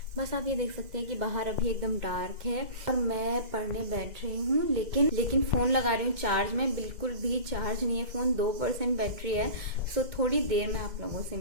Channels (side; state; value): left; late; 2.0 ms